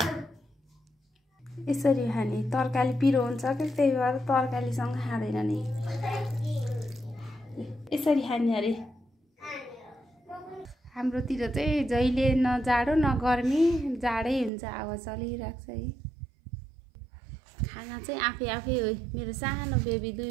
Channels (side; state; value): left; drops out; at 14.5 s